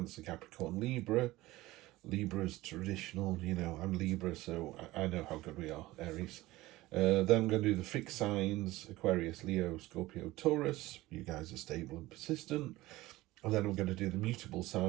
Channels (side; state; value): left; quieter; 18.3 dB